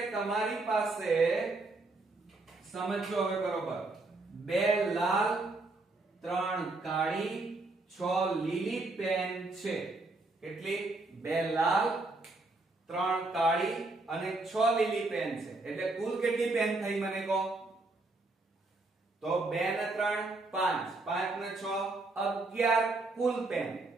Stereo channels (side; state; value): left; quieter; 3.2 dB